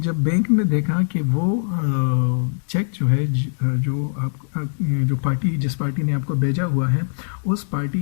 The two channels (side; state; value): right; silent; digital silence